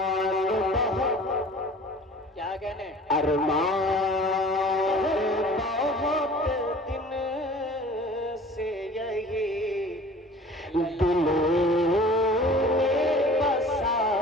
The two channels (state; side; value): normal; both; correlation 0.45